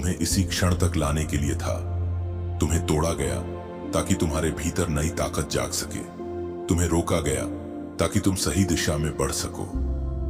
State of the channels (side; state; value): both; identical; correlation 1.00